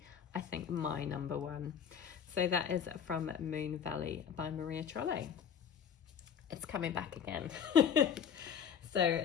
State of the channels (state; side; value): quieter; right; 7.8 dB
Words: I think, my #1. So that is from Moon Valley by Maria Trolle. It's coming back again. So